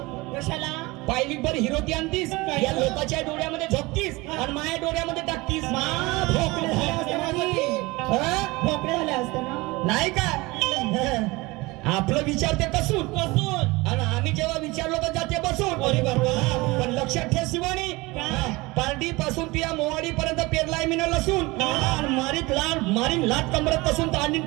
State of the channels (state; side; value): quieter; left; 22.7 dB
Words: कशाला? पाहिली बर हिरोती आणतीस, या लोकांच्या डोळ्यामध्ये झोपतीस आणि माझ्या डोळ्यामध्ये टाकतीस. भोकळे झाले असते माझी. भोकळे झाले असते ना. नाही का? आपलं विचारते कसून कसून, आणि आम्ही जेव्हा विचारलो तर जाते बसून. अरे बाबा. पण लक्षात ठेव शिवानी, पार्टी पासून तुया मोवाडी पर्यंत पेरलाय मी न लसून, आणि मारीन लाट कमरत पासून तर आणीन